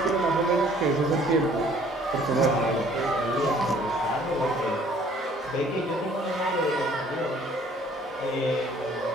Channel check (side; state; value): both; normal; correlation 0.57